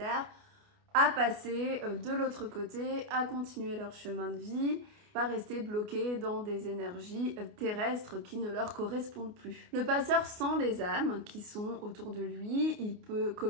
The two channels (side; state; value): left; late; 28 ms